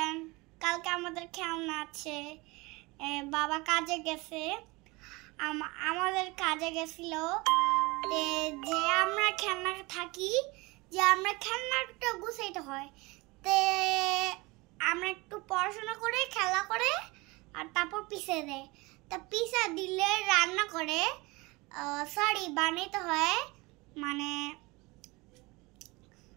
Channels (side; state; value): left; quieter; 24.1 dB